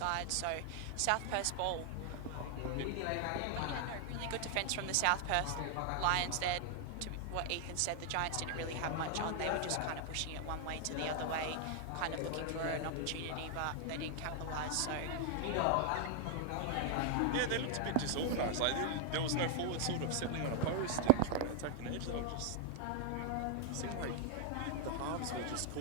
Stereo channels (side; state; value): both; different; correlation 0.00